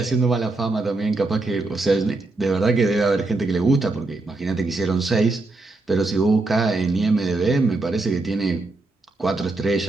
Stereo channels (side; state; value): left; quieter; 3.2 dB